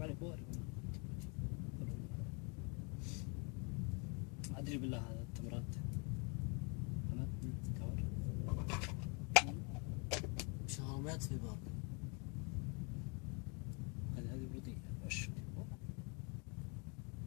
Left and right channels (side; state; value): right; quieter; 33.9 dB